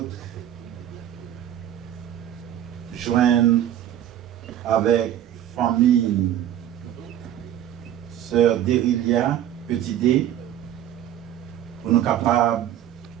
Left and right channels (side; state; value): left; quieter; 11.3 dB